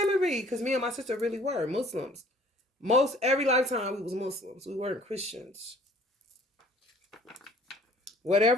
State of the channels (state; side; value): normal; both; correlation 0.54